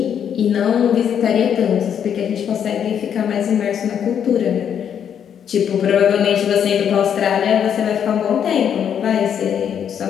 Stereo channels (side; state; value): right; quieter; 8.5 dB